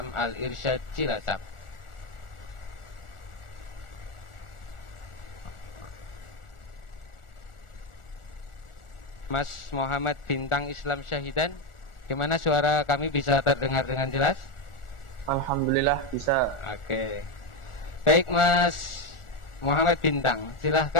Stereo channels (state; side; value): late; right; 1.4 ms